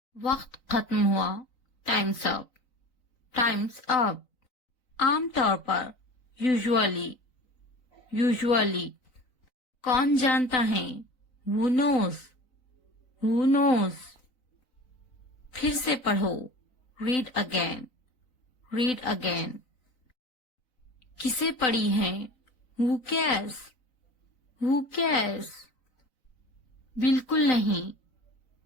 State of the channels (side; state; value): right; late; 3.9 ms